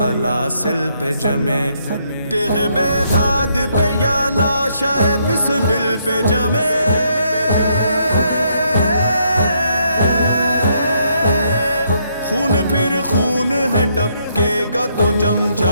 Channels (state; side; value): inverted; both; correlation -0.73